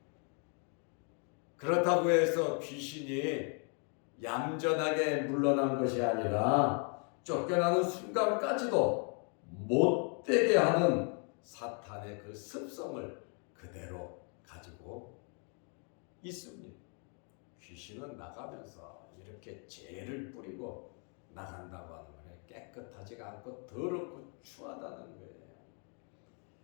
그렇다고 해서 귀신이 얌전하게 물러난 것이 아니라 쫓겨나는 순간까지도 못되게 하는 사탄의 그 습성을 그대로 가지고 있습니다. 귀신은 나가면서 이렇게 죄를 뿌리고 나간다고 하는 거예요. 깨끗하지가 않고 더럽고 추하다는 거예요.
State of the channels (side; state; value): right; quieter; 39.3 dB